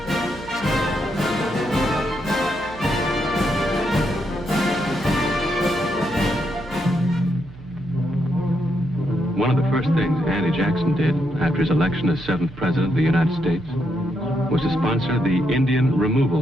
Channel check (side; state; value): right; noise; hum, 18 dB below the sound